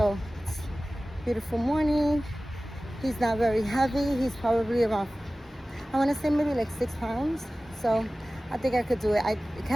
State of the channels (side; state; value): both; normal; correlation 0.97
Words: it's a beautiful morning. He's not very heavy. He's probably around, I want to say maybe like 6 pounds. So I think I could do it. I